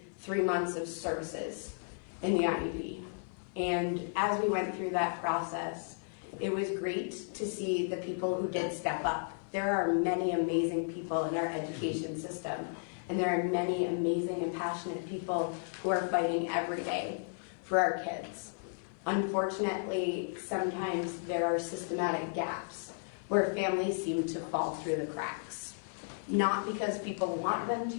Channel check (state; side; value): silent; right; 55 dB below the other